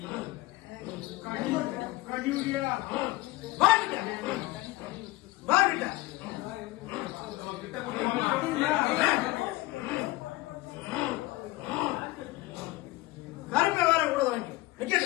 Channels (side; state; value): right; quieter; 19.5 dB